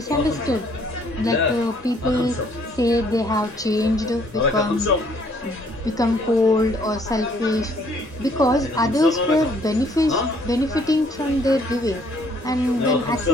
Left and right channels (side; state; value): both; normal; correlation 0.63